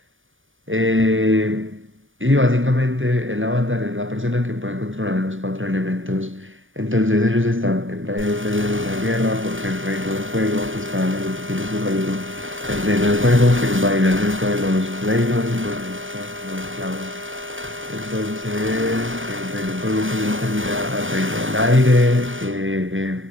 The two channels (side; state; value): left; late; 0.57 ms